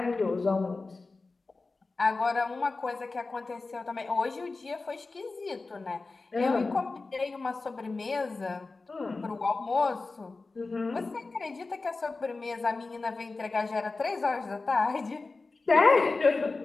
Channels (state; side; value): quieter; right; 3.7 dB